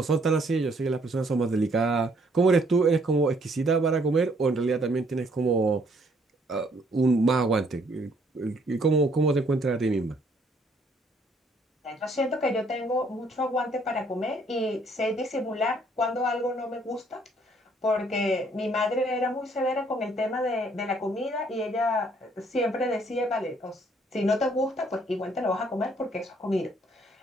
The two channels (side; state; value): both; normal; correlation 0.65